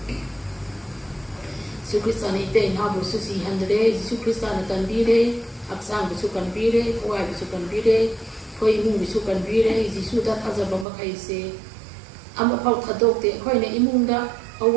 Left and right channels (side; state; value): left; drops out; at 10.9 s